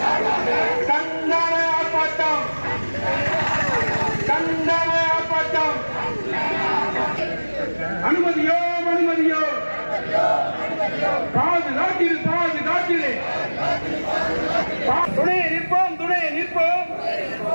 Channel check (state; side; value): inverted; both; correlation -1.00